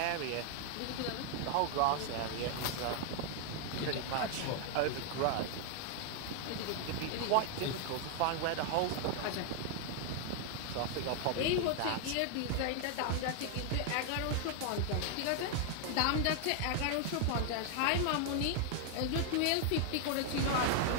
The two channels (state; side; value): different; both; correlation 0.00